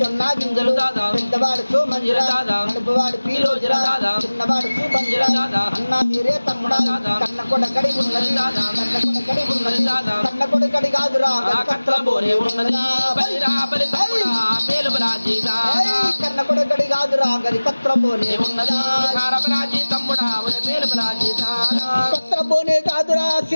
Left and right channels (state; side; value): inverted; both; correlation -1.00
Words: గింజలు దాదా పెద్దవాడు సోమంజిరా దాదా నడుపువాడు పీరోజిరా దాదా చిన్నవాడు సూపంజిరా దాదా అన్నా మీరే తమ్ముడా కన్న కొడకడి ఉన్నది దాదా కన్న కొడకడి ఉన్నది దాదా కన్న కొడకడి కాదురా కట్ల బోరే ఉన్నది బలిరా బలి తమ్ముడా మేలు బలాజీ దాదా కన్న కొడకడి కాదురా గది కత్రబోనే ఉన్నదా బలాజీ తమ్ముడా మేలు బలాజీ దాదా కత్రబోనే కాదురా